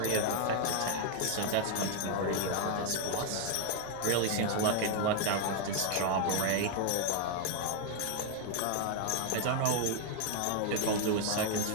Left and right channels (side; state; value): both; different; correlation 0.00